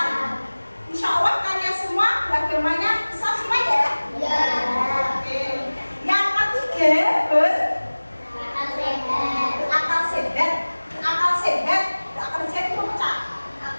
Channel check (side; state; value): both; inverted; correlation -1.00